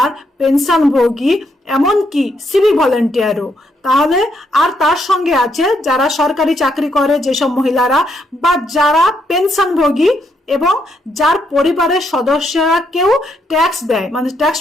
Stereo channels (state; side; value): normal; both; correlation 0.76